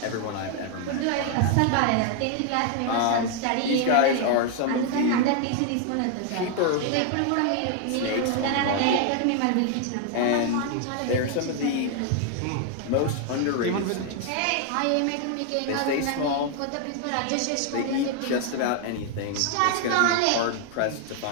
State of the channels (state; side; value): different; both; correlation 0.00